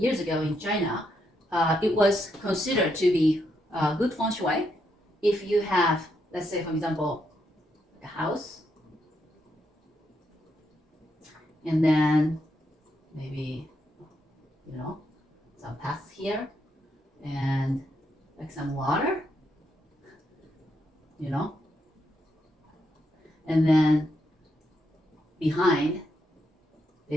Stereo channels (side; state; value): both; normal; correlation 0.79